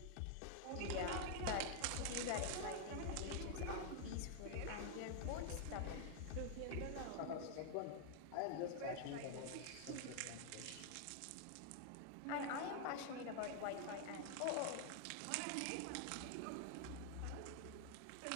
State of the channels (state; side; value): different; both; correlation 0.00